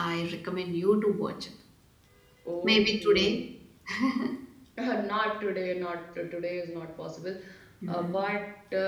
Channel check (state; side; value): identical; both; correlation 1.00